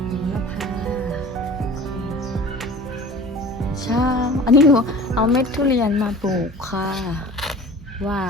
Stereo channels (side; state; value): both; normal; correlation 0.41